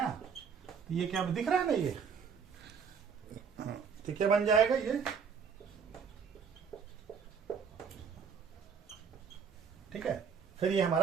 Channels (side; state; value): left; quieter; 6.4 dB